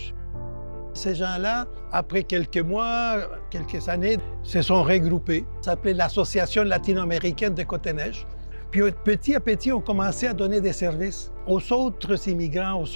Ces gens-là, après quelques mois, quelques années, se sont regroupés. Ça s'appelait l'Association latino-américaine de Côte-des-Neiges. Puis petit à petit, on commençait à donner des services aux autres immigrants,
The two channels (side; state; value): both; inverted; correlation -1.00